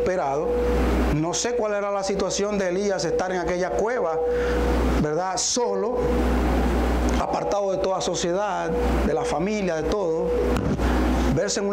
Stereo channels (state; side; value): identical; both; correlation 1.00